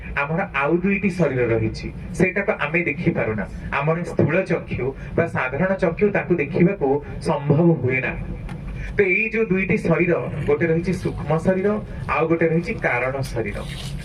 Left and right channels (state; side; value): identical; both; correlation 1.00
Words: हमर आउ दुईटी शरीर रहिछि सेटा को आमे देखि पारुना हमर स्थूल चक्षु बा साधारण चक्षु ताकू देखिबा को संभव हुए ना तो ये जो दुईटी शरीर गोटे रहिछि सूक्ष्म शरीर आउ गोटे रहिछि कारण शरीर